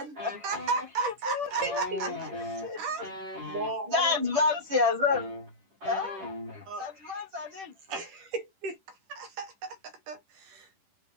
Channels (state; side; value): late; left; 10 ms